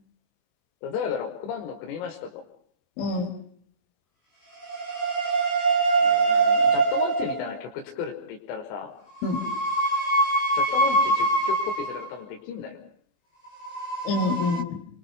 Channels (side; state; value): right; late; 24 ms